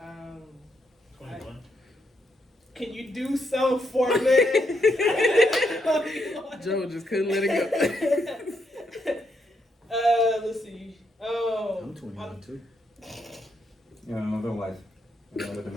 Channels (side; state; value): both; normal; correlation 0.78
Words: 21. Can you do so for me? Joe just couldn't let it go. Let's see. Oh, I'm 21 too. Yeah, another life. Another